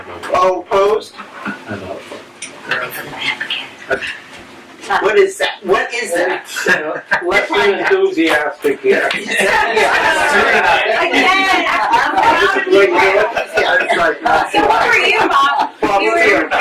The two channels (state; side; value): identical; both; correlation 1.00